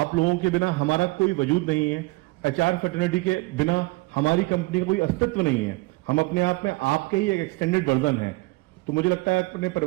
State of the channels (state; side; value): quieter; left; 23.6 dB